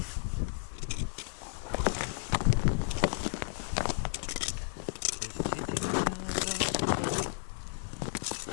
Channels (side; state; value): right; silent; 56 dB below the other